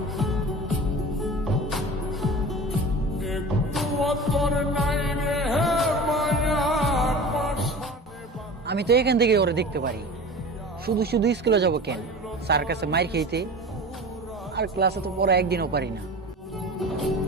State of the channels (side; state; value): both; normal; correlation 0.36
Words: আমি তো এখান থেকে ওরে দেখতে পারি। শুধু শুধু স্কুলে যাব কেন? স্যার কাছে মাইর খেইতে। আর ক্লাসে তো পরে একদিনও পারি না।